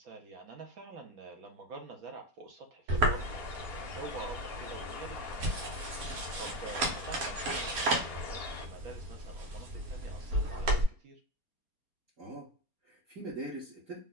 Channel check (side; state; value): left; late; 4.3 ms